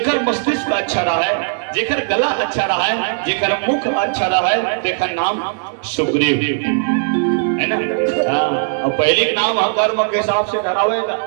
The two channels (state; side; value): silent; left; digital silence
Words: मस्तिष्क अच्छा रहा है, जेकर गला अच्छा रहा है, जेकर मुख अच्छा रहा है, जेकर नाम सुग्रीव, है ना। और पहले नाम कर्म के हिसाब से धरावेगा,